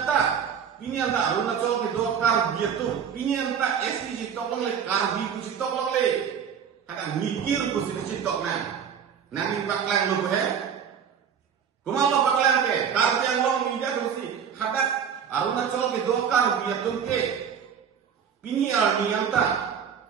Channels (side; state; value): left; quieter; 7.6 dB